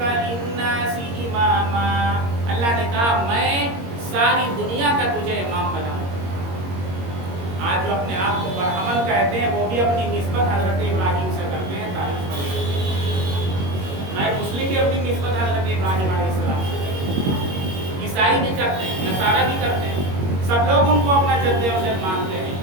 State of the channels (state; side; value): late; left; 21 ms